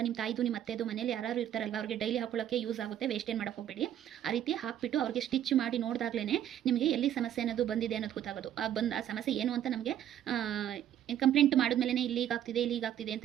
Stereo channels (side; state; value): left; quieter; 10.9 dB